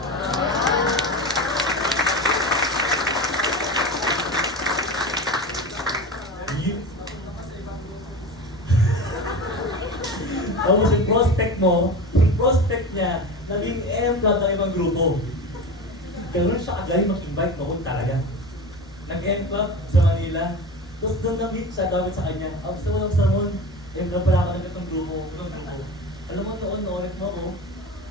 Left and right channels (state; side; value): normal; both; correlation 0.29